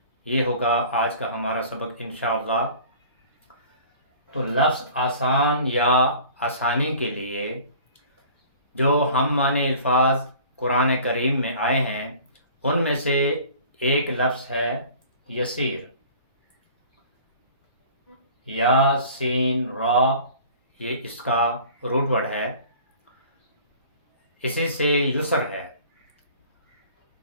یہ ہوگا آج کا ہمارا سبق انشاءاللہ. تو لفظ آسان یا آسانی کے لیے جو ہم معنی الفاظ قرآن کریم میں آئے ہیں ان میں سے ایک لفظ ہے یسیر. یا سین را، یہ اس کا روٹ ورڈ ہے. اسی سے یسر ہے.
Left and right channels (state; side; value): inverted; both; correlation -0.46